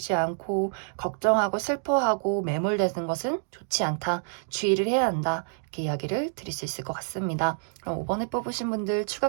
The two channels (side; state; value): left; silent; 60 dB below the other